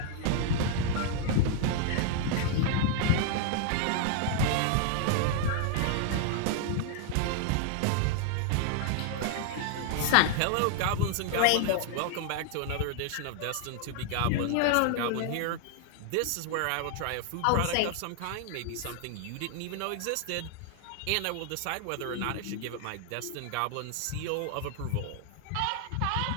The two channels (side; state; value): both; different; correlation 0.00